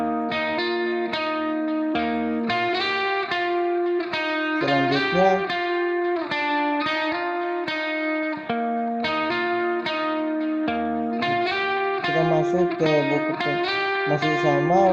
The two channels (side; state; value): both; identical; correlation 1.00